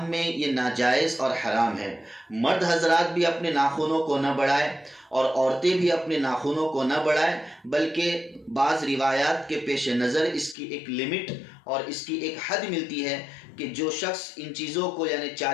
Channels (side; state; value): right; drops out; at 10.6 s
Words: میں یہ ناجائز اور حرام ہے۔ مرد حضرات بھی اپنے ناخنوں کو نہ بڑھائیں اور عورتیں بھی اپنے ناخنوں کو نہ بڑھائیں، بلکہ بعض روایات کے پیش نظر اس کی ایک لمٹ اور اس کی ایک حد ملتی ہے کہ جو شخص ان چیزوں کو یعنی